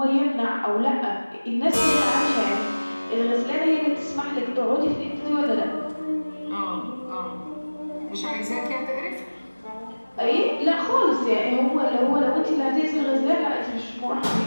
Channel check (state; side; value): inverted; both; correlation -1.00